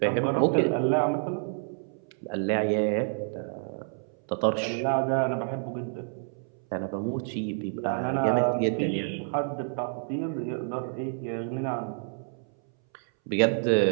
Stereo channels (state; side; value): silent; left; 59 dB below the other